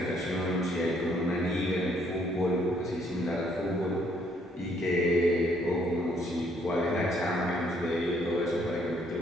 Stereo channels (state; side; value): normal; both; correlation 0.67